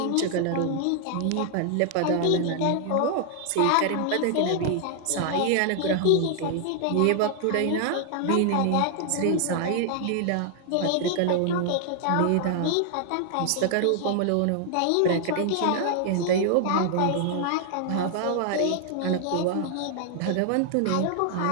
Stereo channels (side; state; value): both; different; correlation 0.00